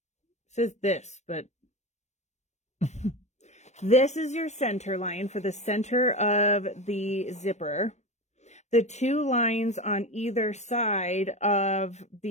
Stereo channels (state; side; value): late; right; 0.33 ms